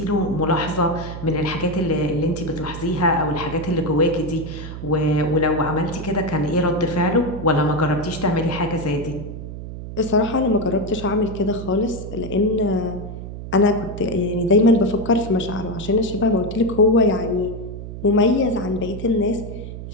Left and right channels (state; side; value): noise; right; hum, 10 dB below the sound